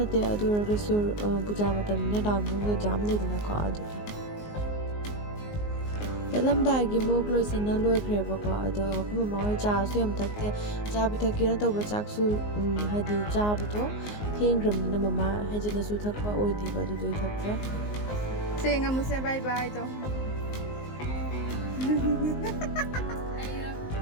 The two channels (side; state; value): right; late; 19 ms